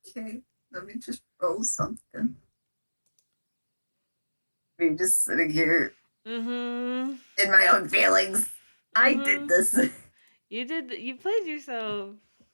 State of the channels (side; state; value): both; inverted; correlation -1.00